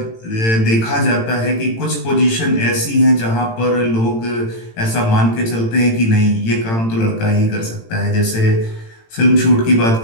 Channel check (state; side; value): late; right; 18 ms